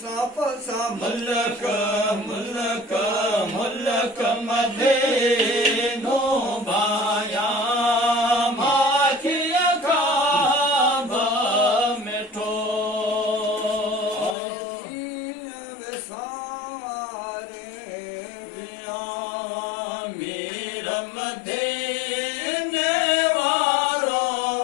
मुल्क मुल्क मदीनो बाया माखिया खाब मिठो मीर मदीने वारो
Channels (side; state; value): right; drops out; at 14.4 s